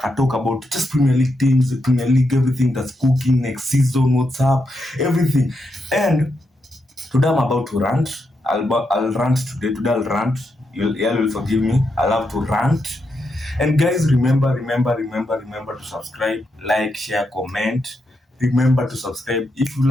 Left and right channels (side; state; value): both; normal; correlation 0.83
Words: talk about just Premier League teams, Premier League, everything that's cooking next season, what's up, everything. And today I'm about to rant. I'll rant today. Today I'll rant. You'll forgive me. I'll have to rant. And guys, remember to subscribe, like, share, comment. Remember to subscribe. If you